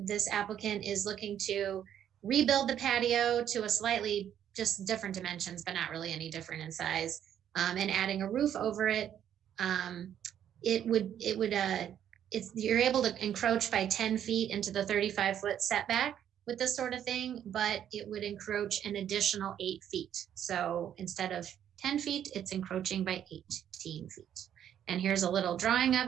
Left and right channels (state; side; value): quieter; left; 10.0 dB